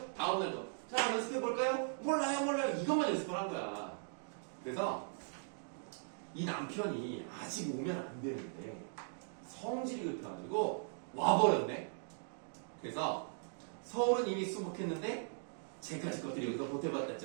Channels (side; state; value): left; silent; digital silence